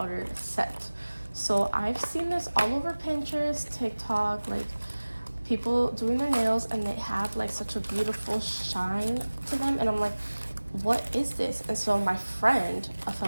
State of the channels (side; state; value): both; inverted; correlation -1.00